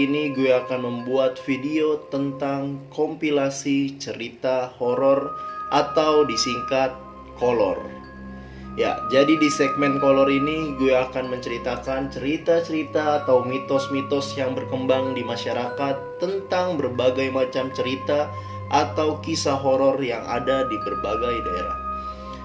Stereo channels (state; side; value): identical; both; correlation 1.00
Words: ini gue akan membuat video tentang kompilasi cerita horor atau disingkat kolor. Ya, jadi di segmen kolor ini gue akan menceritakan cerita-cerita atau mitos-mitos yang berkembang di masyarakat tentang berbagai macam cerita atau kisah horor yang ada di berbagai daerah.